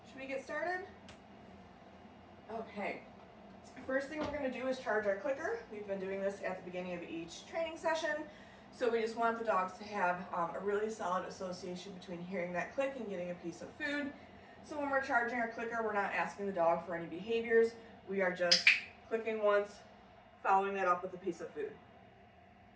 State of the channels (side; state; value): both; identical; correlation 1.00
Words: Should we get started? Okay. First thing we're going to do is charge our clicker. We've been doing this at the beginning of each training session, so we just want the dogs to have a really solid association between hearing that click and getting a piece of food. So when we're charging our clicker, we're not asking the dog for any behaviors. We are just clicking once, following that up with a piece of food.